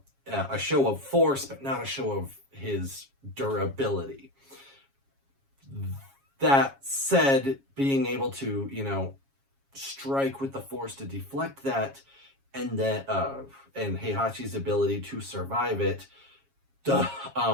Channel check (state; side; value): late; left; 7.3 ms